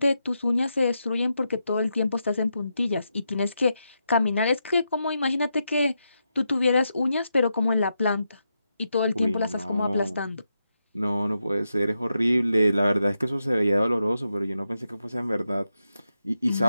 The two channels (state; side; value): inverted; both; correlation -0.85